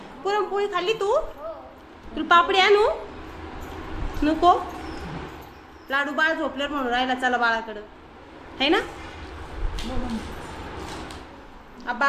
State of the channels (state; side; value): identical; both; correlation 1.00